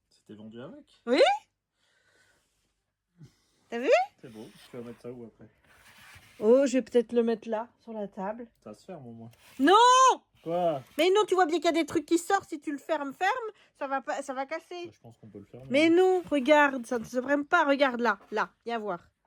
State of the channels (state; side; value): identical; both; correlation 1.00